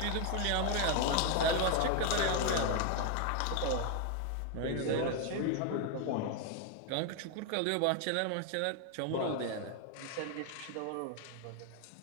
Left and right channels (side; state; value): both; different; correlation 0.01